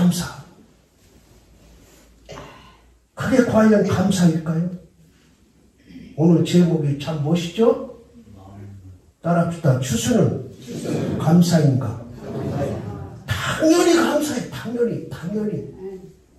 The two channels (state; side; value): identical; both; correlation 1.00